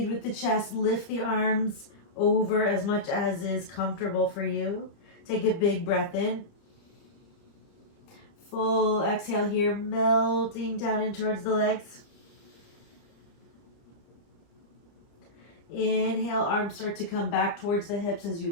with the chest. Lift the arms over as much as is comfortable for you. Take a big breath in. Full exhale here, melting down in towards the legs. Inhale, arms start to come back towards the hips as you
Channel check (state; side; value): late; right; 30 ms